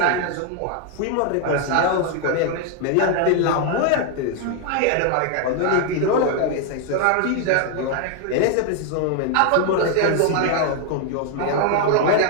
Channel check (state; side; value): different; both; correlation 0.00